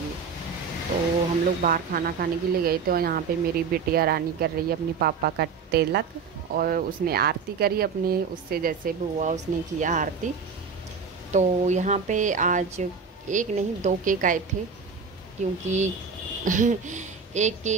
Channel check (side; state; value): left; quieter; 5.6 dB